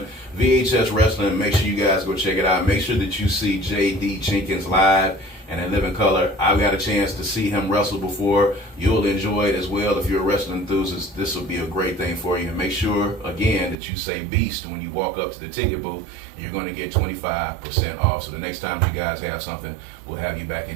VHS Wrestling. Make sure you guys go check it out. Make sure that you see JD Jenkins live and in living color. I've got a chance to see him wrestle before. You'll enjoy it as well. If you're a wrestling enthusiast, this will be a great thing for you. And make sure, again, that you say Beast when you walk up to the ticket booth. You're going to get 25% off. So the next time you guys have something, we'll have you back in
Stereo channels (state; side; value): drops out; left; at 13.8 s